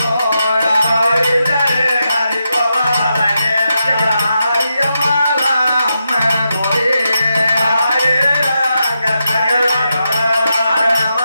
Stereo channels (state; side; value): inverted; both; correlation -0.86